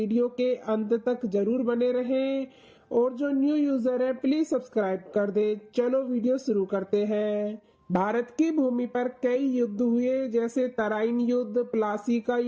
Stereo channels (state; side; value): identical; both; correlation 1.00